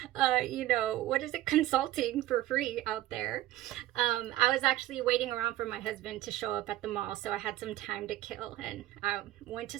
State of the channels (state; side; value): quieter; left; 14.8 dB